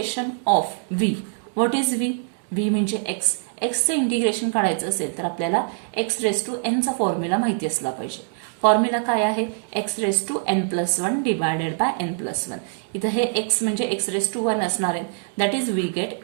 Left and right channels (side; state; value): left; silent; digital silence